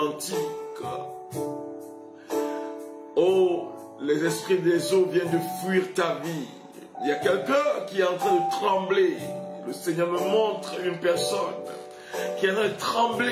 Oh, les esprits des eaux viennent de fuir ta vie. Il y a quelqu'un qui est en train de trembler. Le Seigneur me montre une personne qui est en train de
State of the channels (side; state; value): both; identical; correlation 1.00